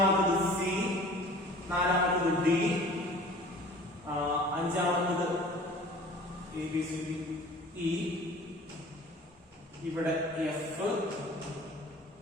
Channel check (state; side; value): normal; both; correlation 0.45